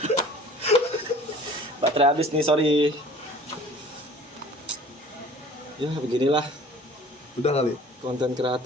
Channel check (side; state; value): both; normal; correlation 0.48